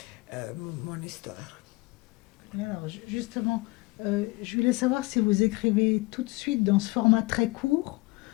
mon histoire. Alors, justement, je voulais savoir si vous écrivez tout de suite dans ce format très court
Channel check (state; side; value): quieter; right; 23.8 dB